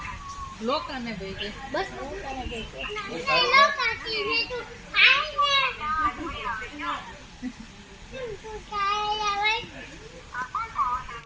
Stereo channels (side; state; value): both; identical; correlation 1.00